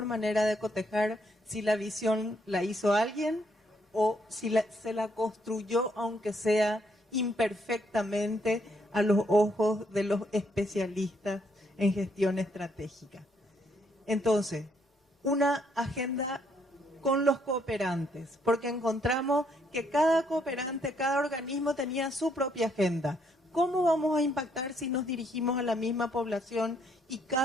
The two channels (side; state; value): both; normal; correlation 0.72